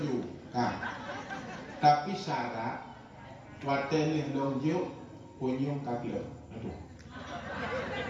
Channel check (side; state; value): both; identical; correlation 1.00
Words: Tapi syarat watenih lunjuk punyung kakil. Aduh.